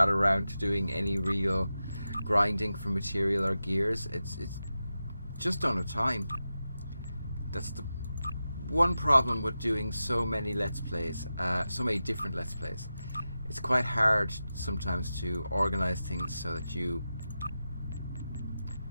to doing any real grinding for material or gears. It's just don't have time. That's the one problem with doing so many Let's Plays, so many different Let's Plays. It's quite hard sometimes to organize things so that you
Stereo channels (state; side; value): inverted; both; correlation -0.92